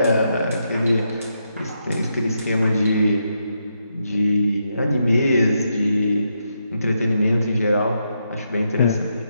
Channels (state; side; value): inverted; both; correlation -0.81